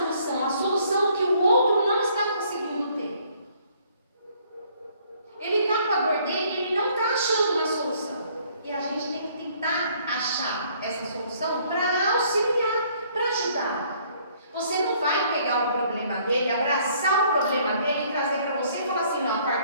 A solução que o outro não está conseguindo ter. Ele está com a dor dele e ele não está achando uma solução. E a gente tem que tentar achar essa solução para auxiliar, para ajudar. Você não vai pegar o problema dele, abraçar o problema dele e trazer para você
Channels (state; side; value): inverted; both; correlation -0.62